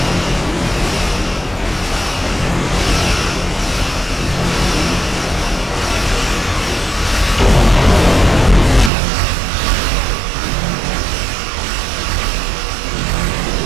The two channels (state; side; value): drops out; left; at 8.9 s